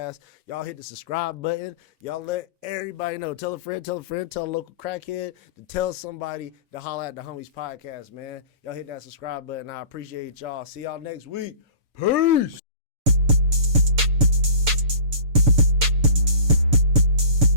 Y'all hit the subscribe button. Y'all let everybody know. Tell a friend, tell a local crackhead to tell somebody to holler at the Homies Podcast, man. Y'all hit that subscribe button. I appreciate y'all. See y'all next week. Peace.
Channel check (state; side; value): late; left; 7.0 ms